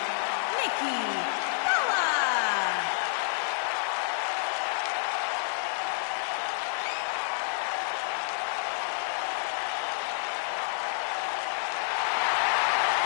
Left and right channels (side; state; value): right; silent; digital silence